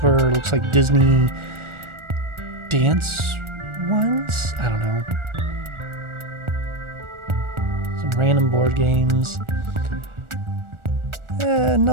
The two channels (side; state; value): left; late; 1.4 ms